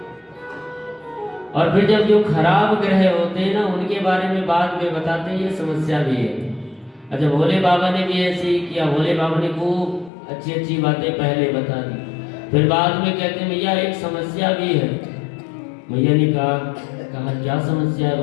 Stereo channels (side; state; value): right; drops out; at 10.1 s